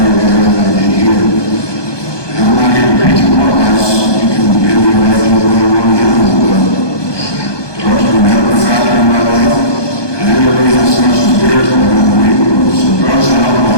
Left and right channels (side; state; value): right; late; 1.2 ms